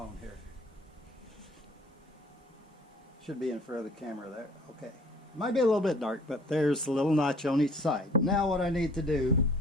here. Should be in front of the camera there. Okay. Might be a little bit dark, but there's a little notch on each side. Now what I need to do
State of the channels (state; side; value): normal; both; correlation 0.54